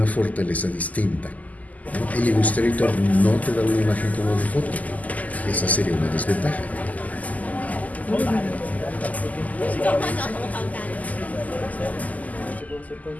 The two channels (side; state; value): right; late; 0.077 ms